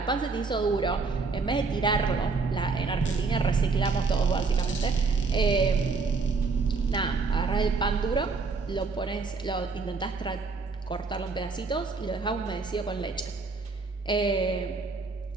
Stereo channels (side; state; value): left; quieter; 4.3 dB